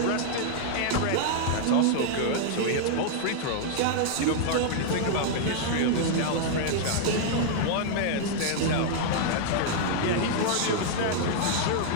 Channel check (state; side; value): different; both; correlation -0.01